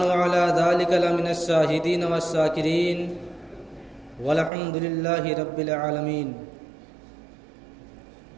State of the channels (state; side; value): drops out; left; at 4.5 s